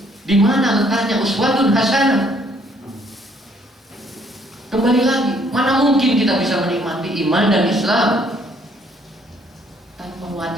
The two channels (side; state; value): both; normal; correlation 0.65